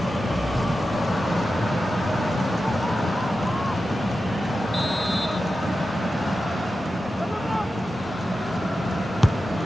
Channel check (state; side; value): normal; both; correlation 0.92